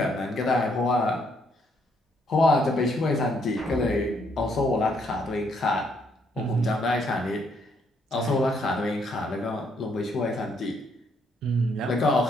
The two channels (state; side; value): normal; both; correlation 0.71